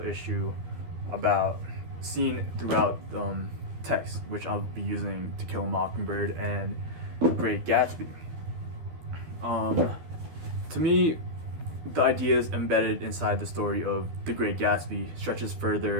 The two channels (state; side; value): late; left; 13 ms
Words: issue about seen throughout text, which I'll be using To Kill a Mockingbird and Great Gatsby. To me, the ideas embedded inside the story of The Great Gatsby stretches